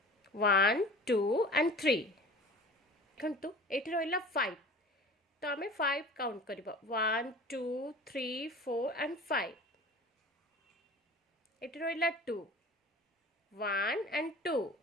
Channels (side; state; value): both; normal; correlation 0.41